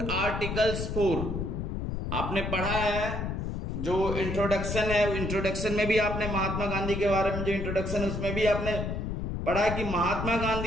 articles 4। आपने पढ़ा है जो इंट्रोडक्शन है, इंट्रोडक्शन में भी आपने महात्मा गांधी के बारे में जो इंट्रोडक्शन है उसमें भी आपने पढ़ा कि महात्मा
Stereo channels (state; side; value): noise; left; rumble, 3 dB below the sound